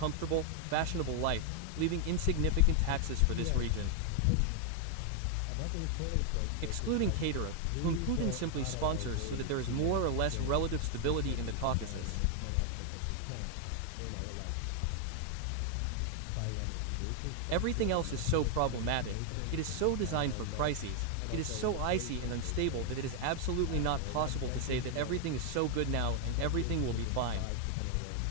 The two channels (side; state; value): both; different; correlation 0.00